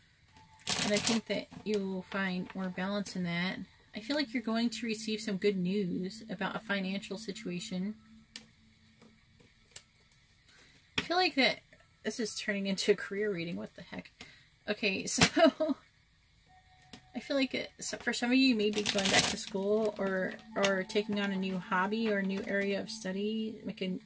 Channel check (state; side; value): identical; both; correlation 1.00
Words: And I think that you will find more balance in that. I feel like you're going to receive some good news about a financial situation. I feel like that this is turning into a career reading. What the heck? Okay, so I feel like for some of you, maybe going back to school or taking on a new hobby or a new area of study, like